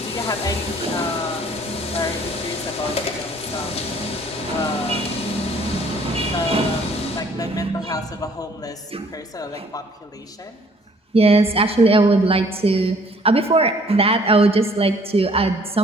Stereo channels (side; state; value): both; normal; correlation 0.59